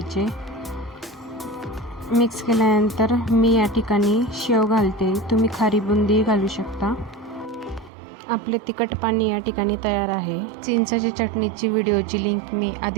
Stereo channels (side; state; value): left; drops out; at 7.9 s